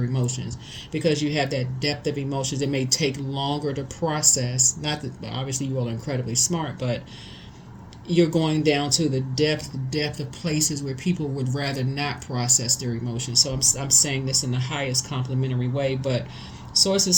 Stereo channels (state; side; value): identical; both; correlation 1.00